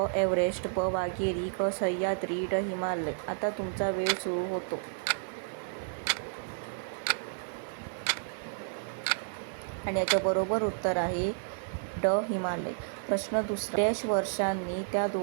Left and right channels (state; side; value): silent; left; digital silence